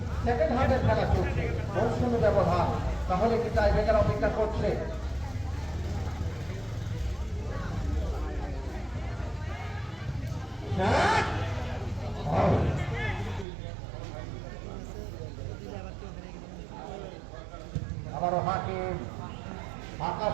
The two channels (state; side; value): drops out; left; at 13.5 s